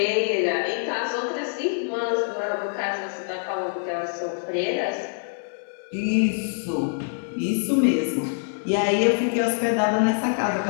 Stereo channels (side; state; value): right; silent; 62 dB below the other